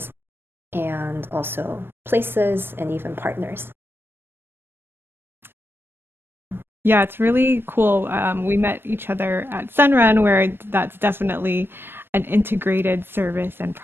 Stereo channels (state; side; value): late; left; 0.10 ms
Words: and also places and even partners. Yeah, it's really cool. We met each other at Sunrun, where that's definitely an integrated service and